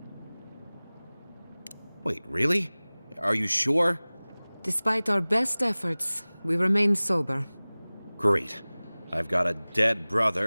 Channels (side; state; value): both; inverted; correlation -1.00